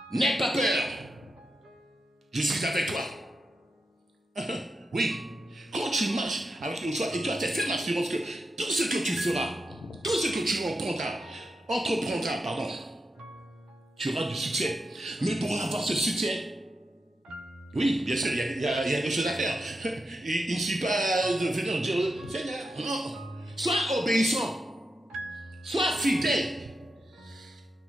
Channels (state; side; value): normal; both; correlation 0.87